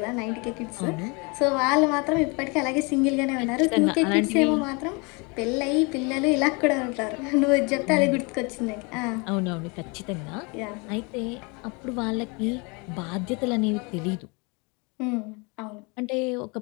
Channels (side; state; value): right; quieter; 30.1 dB